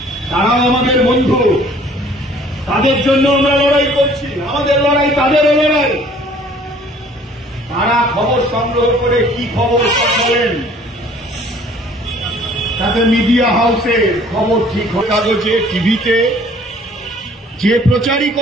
তারাও আমাদের বন্ধু। তাদের জন্য আমরা লড়াই করছি, আমাদের লড়াই তাদেরও লড়াই। তারা খবর সংগ্রহ করে কি খবর বলেন, তাতে মিডিয়া হাউসে খবর ঠিক হয়, কাগজে, টিভিতে যে প্রচারই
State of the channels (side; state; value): both; normal; correlation 0.55